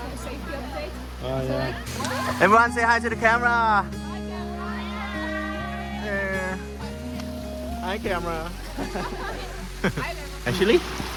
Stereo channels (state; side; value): identical; both; correlation 1.00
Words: no safety update. Yeah. Everyone say hi to the camera. Yeah. Hi, camera. Actually,